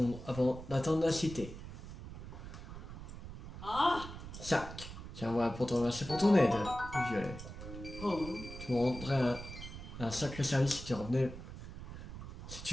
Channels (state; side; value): noise; right; rumble, 11 dB below the sound